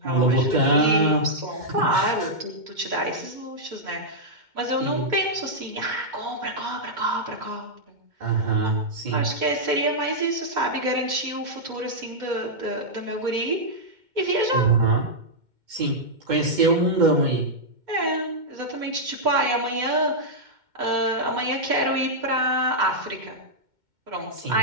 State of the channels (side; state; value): left; late; 2.1 ms